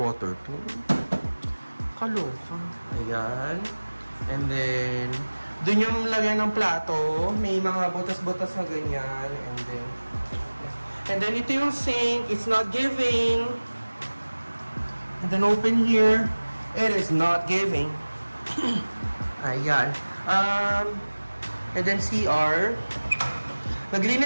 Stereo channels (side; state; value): both; inverted; correlation -1.00